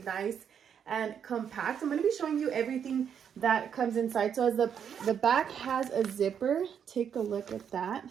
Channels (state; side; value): quieter; left; 8.0 dB